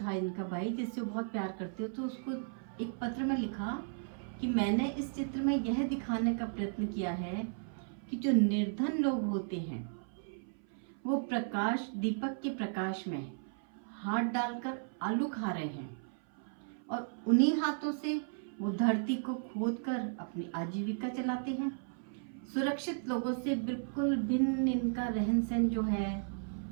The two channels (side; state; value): left; silent; 54 dB below the other